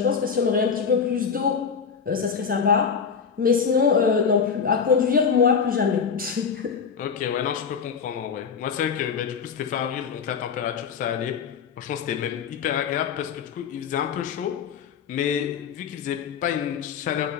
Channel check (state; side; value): quieter; right; 6.4 dB